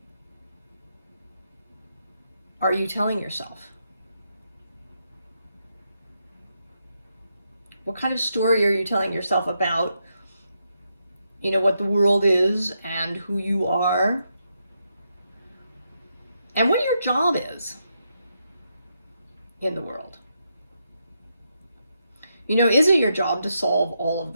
are you telling yourself? What kind of story are you telling yourself about, you know, what the world is and who you are and what your job is in the world? You know, is it your job to solve all of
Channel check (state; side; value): inverted; both; correlation -0.82